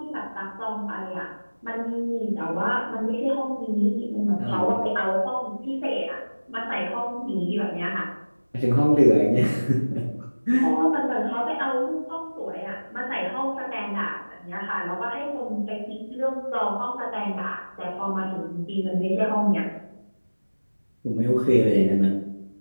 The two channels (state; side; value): inverted; both; correlation -1.00